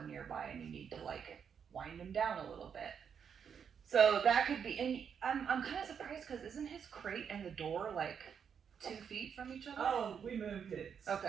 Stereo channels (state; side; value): quieter; left; 7.3 dB